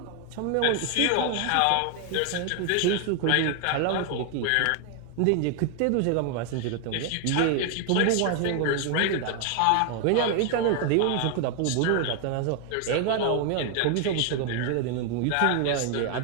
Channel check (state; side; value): different; both; correlation 0.01